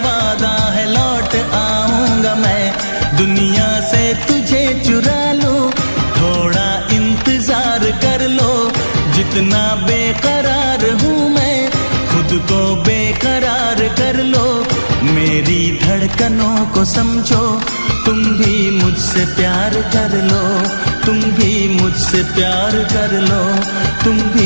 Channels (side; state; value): both; inverted; correlation -1.00